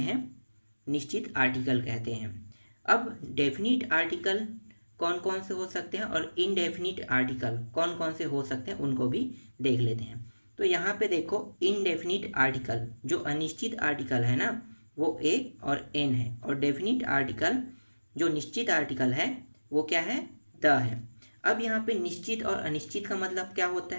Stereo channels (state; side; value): inverted; both; correlation -1.00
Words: निश्चित आर्टिकल कहते हैं। अब डेफिनिट आर्टिकल कौन कौन से हो सकते हैं और इनडेफिनिट आर्टिकल कौन कौन से हो सकते हैं उनको भी देख लेते हैं। तो यहाँ पे देखो, इनडेफिनिट आर्टिकल जो अनिश्चित आर्टिकल है ना, वो ए और एन है। और डेफिनिट आर्टिकल जो निश्चित आर्टिकल है वो क्या है? द है। अब यहाँ पे निश्चित और अनिश्चित का मतलब क्या होता